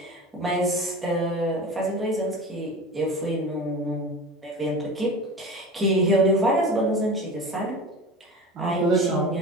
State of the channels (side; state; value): both; normal; correlation 0.33